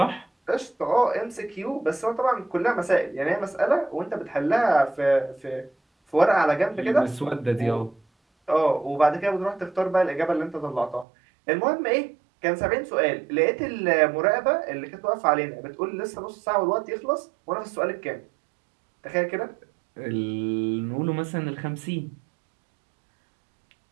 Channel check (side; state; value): left; drops out; at 11.1 s